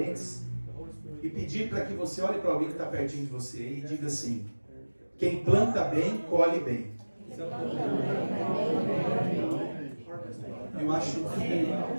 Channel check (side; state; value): both; inverted; correlation -1.00